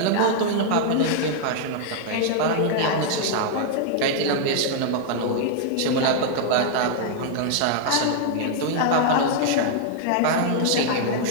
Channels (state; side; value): different; both; correlation -0.01